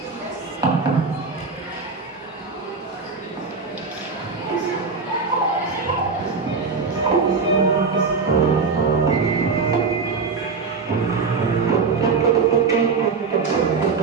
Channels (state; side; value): quieter; left; 4.8 dB